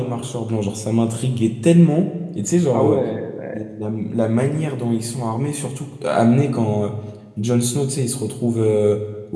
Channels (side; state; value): both; identical; correlation 1.00